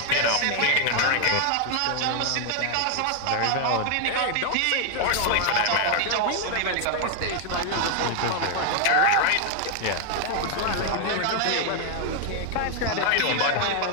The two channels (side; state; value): both; different; correlation 0.00